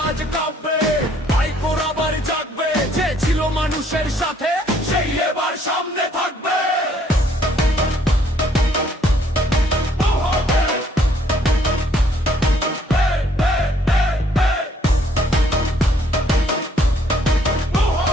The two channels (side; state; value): both; normal; correlation 0.65